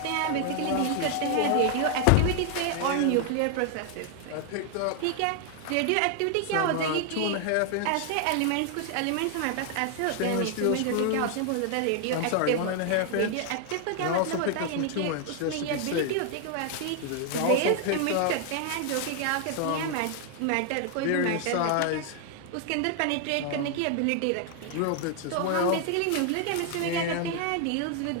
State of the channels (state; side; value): different; both; correlation 0.00